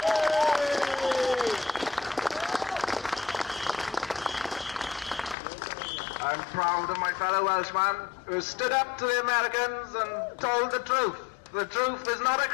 I'm proud of my fellow Welshman who stood up to the Americans and told the truth. The truth is not a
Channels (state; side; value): drops out; right; at 5.4 s